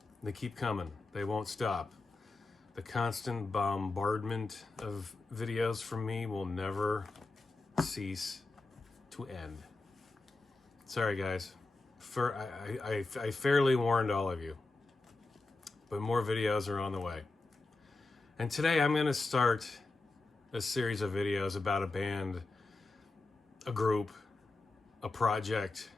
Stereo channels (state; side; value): quieter; right; 3.3 dB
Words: They keep coming. They won't stop. The constant bombardment of videos from me will never cease to end. Sorry, guys. I fairly warned all of you, but more videos are on the way. And today I'm going to start a series of videos about a band, a group, a project,